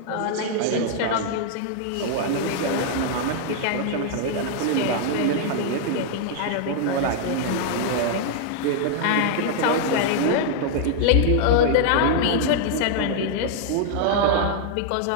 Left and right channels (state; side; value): different; both; correlation 0.00